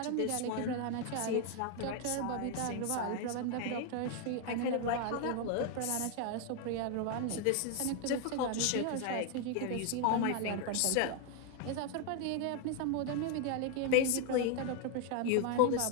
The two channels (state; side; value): different; both; correlation 0.01